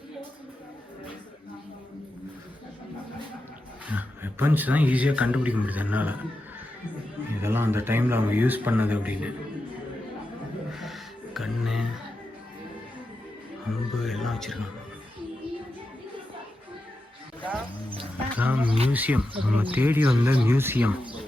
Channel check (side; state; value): both; normal; correlation 0.89